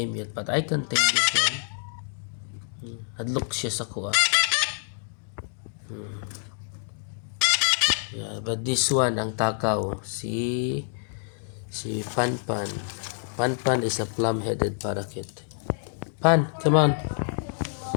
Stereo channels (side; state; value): right; silent; digital silence